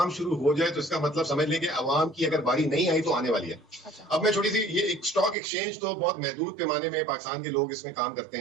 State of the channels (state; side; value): drops out; left; at 5.4 s